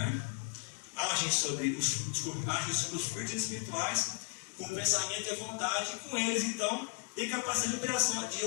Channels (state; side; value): quieter; right; 38.0 dB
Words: agem sobre os fluidos espirituais com o pensamento e a vontade, e com eles então tem capacidade de